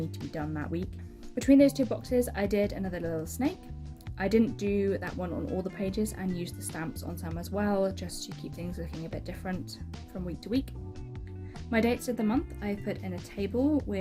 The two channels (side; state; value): both; identical; correlation 1.00